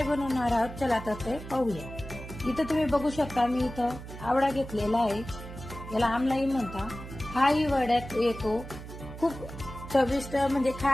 बनवणार आहोत चला तर ते पाहूया। इथं तुम्ही बघू शकता मी इथं आवळा घेतलेला आहे, याला आमलाई म्हणता। हाही वड्यात येतो, खूप चविष्ट म्हणजे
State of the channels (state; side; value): noise; right; hum, 12 dB below the sound